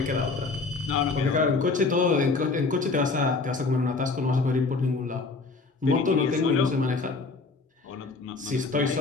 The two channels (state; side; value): quieter; right; 4.0 dB